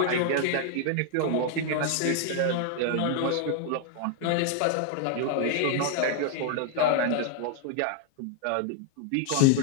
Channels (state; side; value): different; both; correlation 0.00